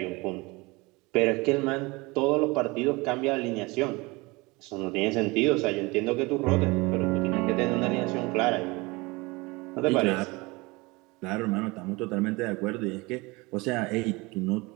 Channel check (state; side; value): quieter; left; 24.3 dB